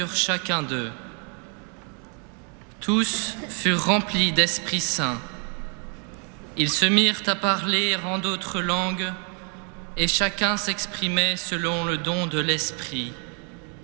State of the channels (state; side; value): quieter; left; 39.7 dB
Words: chacun d'eux. Tous furent remplis d'Esprit Saint. Ils se mirent à parler en d'autres langues, et chacun s'exprimait selon le don de l'Esprit.